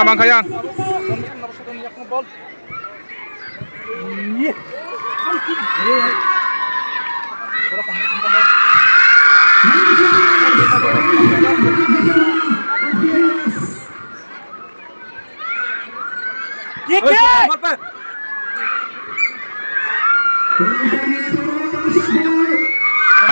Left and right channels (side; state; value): both; inverted; correlation -1.00